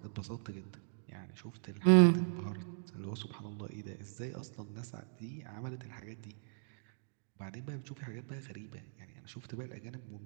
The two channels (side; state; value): left; silent; digital silence